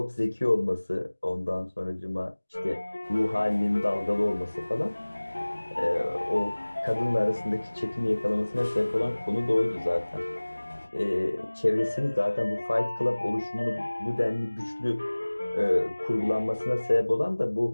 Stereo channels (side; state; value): both; inverted; correlation -1.00